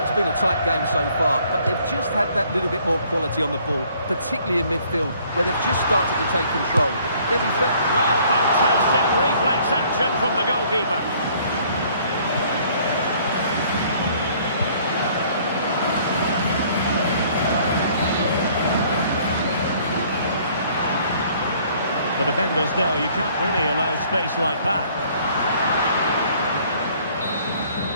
it's been a tight game so far, but they've just had that little bit more quality on the ball, particularly in midfield, where they've just started to take control. They'll be fit. Well, fantastic reflex action from the goalkeeper. The defenders know you can't really allow space like that.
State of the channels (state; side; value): inverted; both; correlation -0.59